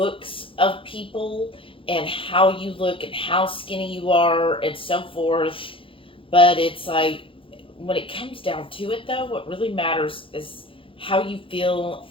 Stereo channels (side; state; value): right; late; 0.25 ms